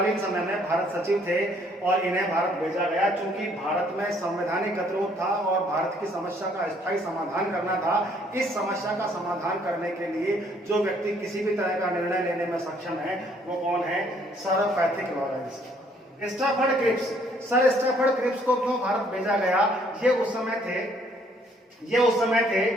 समय में भारत सचिव थे और इन्हें भारत भेजा गया। चूंकि भारत में संवैधानिक गतिरोध था और भारत की समस्या का स्थायी समाधान करना था। इस समस्या का समाधान करने के लिए जो व्यक्ति किसी भी तरह का निर्णय लेने में सक्षम है वो कौन है? Sir Pethick Lawrence. Sir Stafford Cripps को क्यों भारत भेजा गया? ये उस समय थे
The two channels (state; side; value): normal; both; correlation 0.64